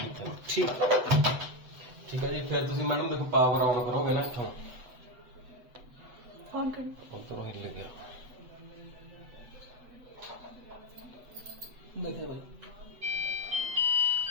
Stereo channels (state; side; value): late; left; 8.0 ms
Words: ਇੱਥੇ। ਠੀਕ ਠੀਕ ਹੈ ਜੀ। ਫਿਰ ਤੁਸੀਂ ਮੈਡਮ ਦੇਖੋ ਪਾਵਰ ਆਨ ਕਰੋਗੇ ਨਾ ਇੱਥੋਂ, ऑन कर ਉੱਧਰੋਂ ਹਿੱਲ ਗਿਆ। ਦੇਖੇ ਬਾਈ।